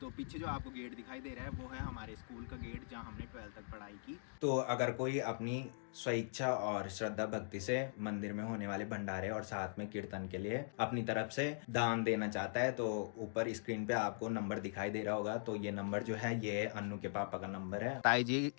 तो पीछे जो आपको गेट दिखाई दे रहा है वो है हमारे स्कूल का गेट जहाँ हमने 12th तक पढ़ाई की। तो अगर कोई अपनी स्वेच्छा और श्रद्धा भक्ति से मंदिर में होने वाले भंडारे और साथ में कीर्तन के लिए अपनी तरफ से दान देना चाहता है तो ऊपर स्क्रीन पे आपको नंबर दिखाई दे रहा होगा। तो ये नंबर जो है ये अन्नू के पापा का नंबर है। ताई जी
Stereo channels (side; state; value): right; silent; digital silence